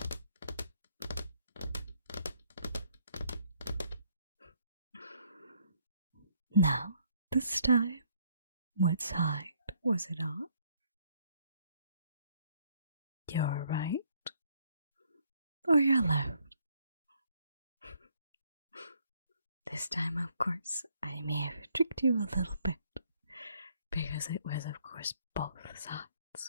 Now, this time, what side was it on? Your right or your left? This time, of course, I may have tricked you a little bit, because it was, of course, both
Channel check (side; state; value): both; inverted; correlation -0.68